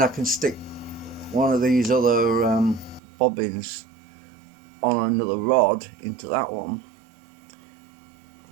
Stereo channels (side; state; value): left; drops out; at 3.0 s